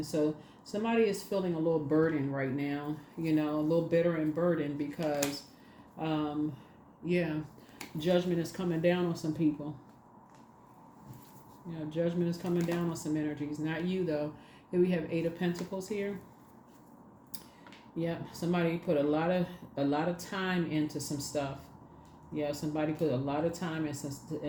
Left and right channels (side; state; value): both; identical; correlation 1.00